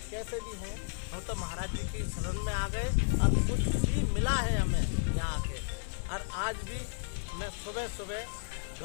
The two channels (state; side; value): silent; right; 56 dB below the other